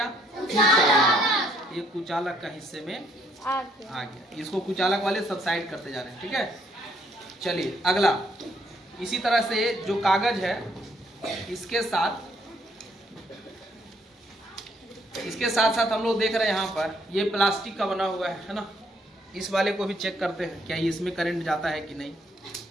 कुचालक। ये कुचालक का हिस्से में आ गया। इसको कुचालक वाले सब साइड करते जा रहे हैं। ठीक है, चलिए अगला। इसी तरह से जो कागज है इसके साथ साथ हम लोग देख रहे हैं यहाँ पर ये प्लास्टिक का बना हुआ है ना। इस वाले को भी चेक करते हैं क्या इसमें करंट जाता है कि नहीं।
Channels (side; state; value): both; normal; correlation 0.68